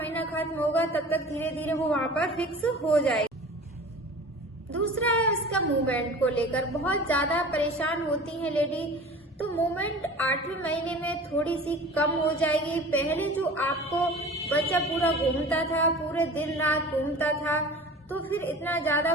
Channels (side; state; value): both; normal; correlation 0.40